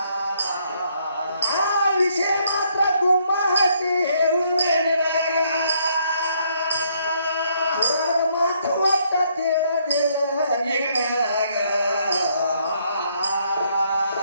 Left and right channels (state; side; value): inverted; both; correlation -0.70